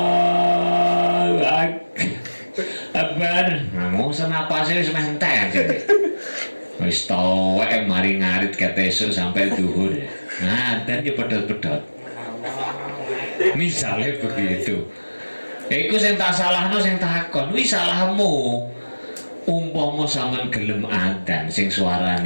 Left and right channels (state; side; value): inverted; both; correlation -1.00